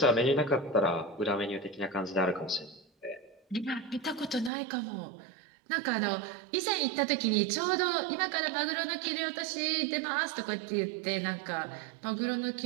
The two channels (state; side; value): drops out; left; at 4.5 s